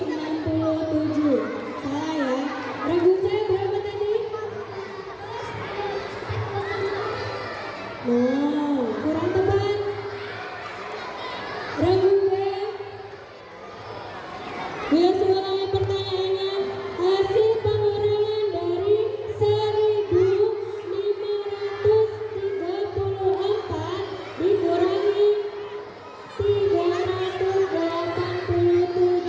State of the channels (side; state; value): both; identical; correlation 1.00